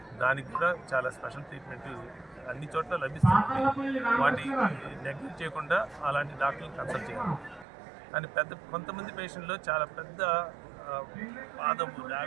దానికి కూడా చాలా స్పెషల్ ట్రీట్మెంట్ అన్ని చోట్ల లభిస్తుంది. వాటి నెగ్లెక్ట్ చేయకుండా అలాంటి డాక్టర్ని కన్సల్ట్ చేయాలి. కానీ కొంతమంది పేషెంట్లో చాలా పెద్ద పాదము,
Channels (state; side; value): drops out; left; at 7.7 s